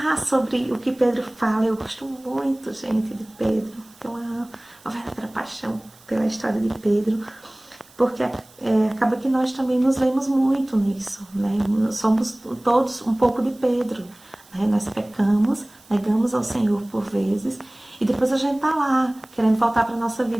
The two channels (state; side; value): noise; right; hiss, 27 dB below the sound